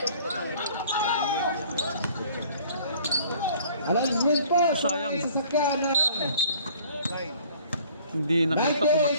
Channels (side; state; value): both; inverted; correlation -0.53